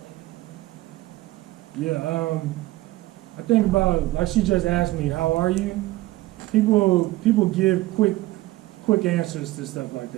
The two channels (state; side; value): quieter; left; 17.9 dB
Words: like? Yeah, I think about, like she just asked me, how are you? People give quick answers to stuff like